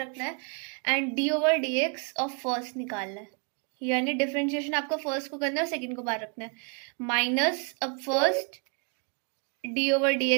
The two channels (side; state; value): left; quieter; 37.9 dB